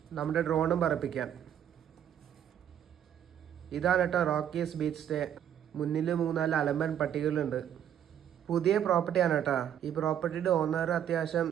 നമ്മുടെ ഡ്രോണും പറപ്പിക്കാം. ഇതാണ് കേട്ടോ റോക്കീസ് ബീച്ച് സ്റ്റേ. മുന്നിൽ 3-4 അലമ്പൻ പട്ടികളുണ്ട്. പുതിയ പ്രോപ്പർട്ടിയാണ് കേട്ടോ. ഈ പ്രോപ്പർട്ടിയുടെ ഓണർ അത്യാവശ്യം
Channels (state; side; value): quieter; left; 9.9 dB